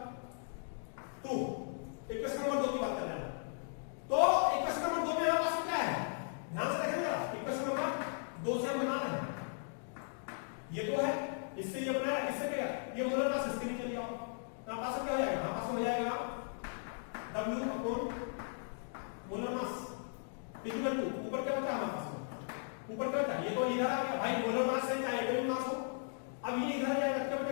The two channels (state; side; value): silent; right; digital silence